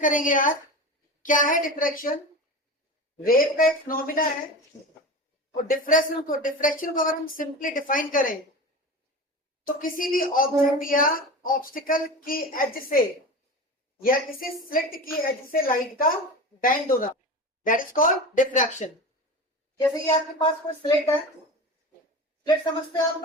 करेंगे आज। क्या है डिफ्रैक्शन? वेव का एक फिनोमिना है। और डिफ्रैक्शन को अगर हम सिंपली डिफाइन करें तो किसी भी ऑब्जेक्ट या ऑब्स्टिकल की एज से या किसी स्लिट की एज से लाइट का बेंड होना, दैट इज कॉल्ड डिफ्रैक्शन। जैसे कि आपके पास कोई स्लिट है, स्लिट समझते हैं आप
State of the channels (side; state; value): both; normal; correlation 0.30